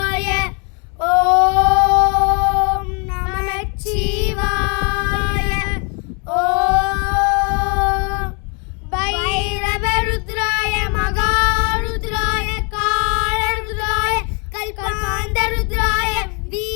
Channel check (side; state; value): right; quieter; 35.2 dB